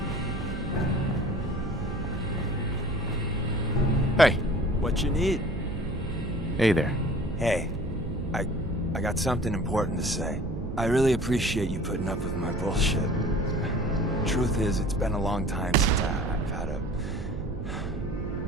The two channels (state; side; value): noise; right; hum, 7 dB below the sound